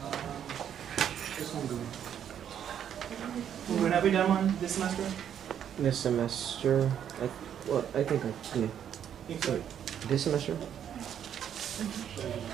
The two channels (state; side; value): quieter; left; 9.3 dB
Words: This one going. when have we done one this semester? This semester, I think yeah. Sorry. This semester?